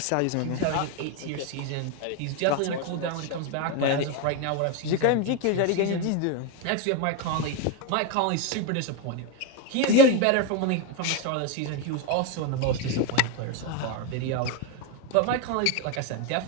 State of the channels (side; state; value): both; different; correlation 0.02